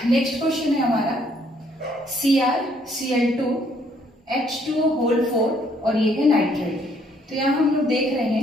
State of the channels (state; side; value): normal; both; correlation 0.67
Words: नेक्स्ट क्वेश्चन है हमारा CrCl2 H2O होल 4 और ये है नाइट्रेट। तो यहाँ हम लोग देख रहे